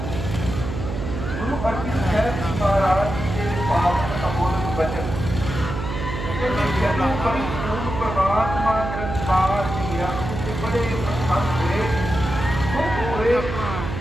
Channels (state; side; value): noise; right; hum, 5 dB below the sound